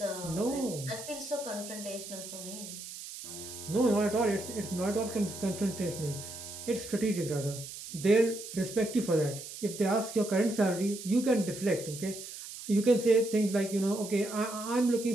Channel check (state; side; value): noise; right; hiss, 11 dB below the sound